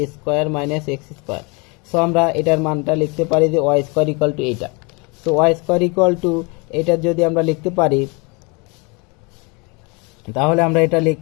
a square minus x square. So আমরা এটার মানটা লিখতে পারি যে ওয়াই স্কোয়ার ইকুয়াল টু এইটা। So y square equal to এটা যদি আমরা লিখতে পারি তাহলে আমরা এটা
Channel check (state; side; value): quieter; right; 30.0 dB